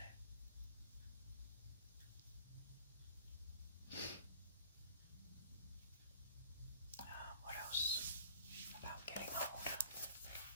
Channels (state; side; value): inverted; both; correlation -0.51